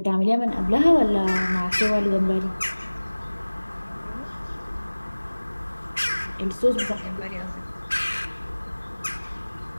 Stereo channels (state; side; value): inverted; both; correlation -1.00